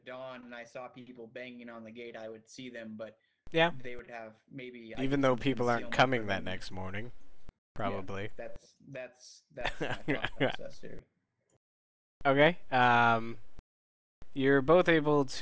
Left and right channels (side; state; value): both; identical; correlation 1.00